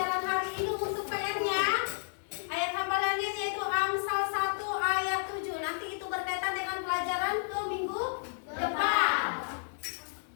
hari ini. Untuk PR-nya, ayat hafalannya yaitu Amsal 1 ayat 7. Nanti itu berkaitan dengan pelajaran ke minggu depan.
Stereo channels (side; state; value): right; silent; digital silence